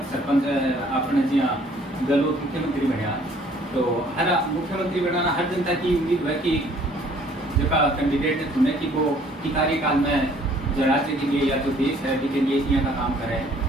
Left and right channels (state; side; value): normal; both; correlation 0.59